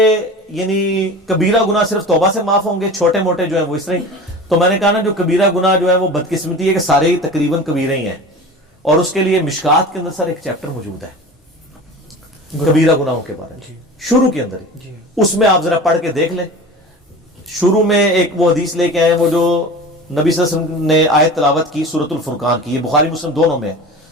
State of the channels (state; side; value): normal; both; correlation 0.35